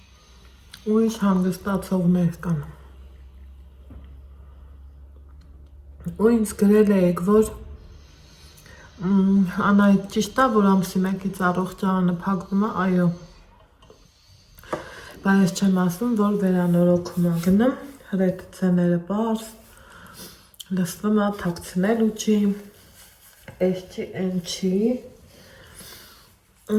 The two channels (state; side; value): identical; both; correlation 1.00